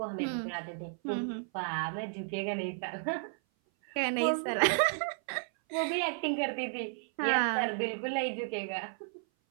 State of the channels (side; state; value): left; silent; 56 dB below the other